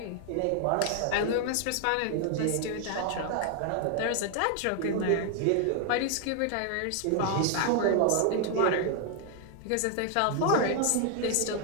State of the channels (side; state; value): both; different; correlation 0.00